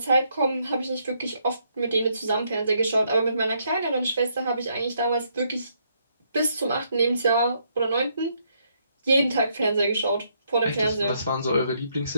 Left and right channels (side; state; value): both; inverted; correlation -0.73